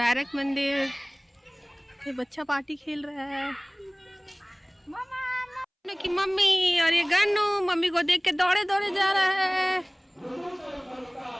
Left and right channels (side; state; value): both; identical; correlation 1.00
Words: मंदिर, ये बच्चा पार्टी खेल रहा है की मम्मी। और ये गन्नू मम्मी को देख के दौड़े दौड़े जा रहा है।